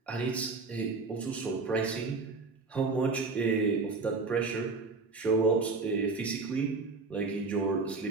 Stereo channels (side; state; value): left; quieter; 4.0 dB